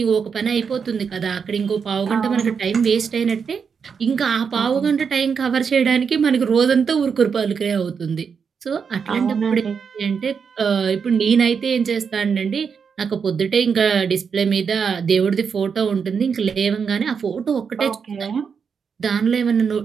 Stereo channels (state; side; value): quieter; left; 6.3 dB